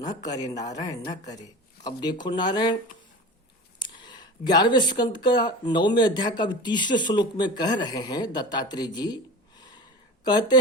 करे नारायण, न करे। अब देखो नारायण, 11वें स्कंद का 9वें अध्याय का 30वें श्लोक में कह रहे हैं दत्तात्रेय जी, कहते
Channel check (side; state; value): both; normal; correlation 0.34